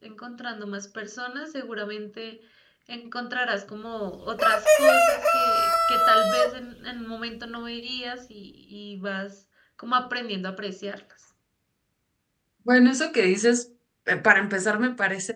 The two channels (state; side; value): identical; both; correlation 1.00